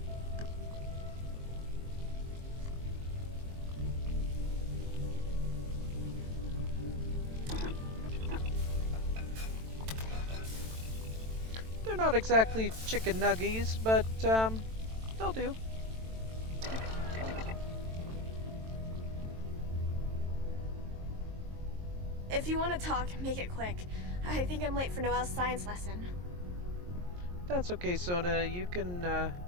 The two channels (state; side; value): late; left; 22 ms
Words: They're not exactly chicken nuggies, but they'll do. If you want to talk, make it quick. I think I'm late for Noelle's science lesson. That's okay, Sona. You can